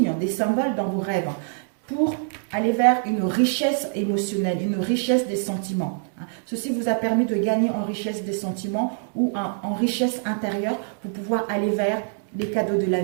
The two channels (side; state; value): left; silent; digital silence